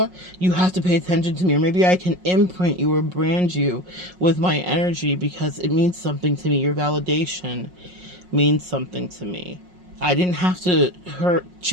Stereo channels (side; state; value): left; late; 5.5 ms